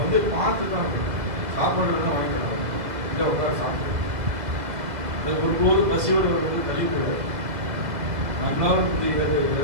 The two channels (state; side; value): late; left; 1.9 ms